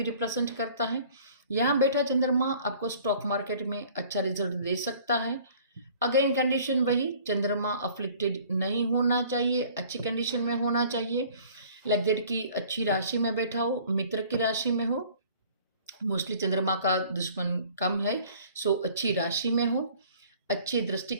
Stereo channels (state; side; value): inverted; both; correlation -0.52